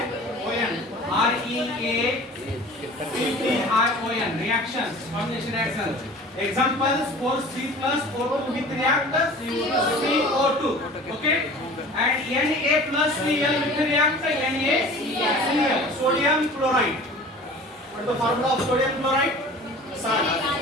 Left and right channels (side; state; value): both; normal; correlation 0.42